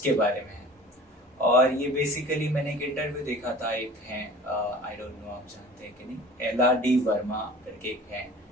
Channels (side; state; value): both; normal; correlation 0.43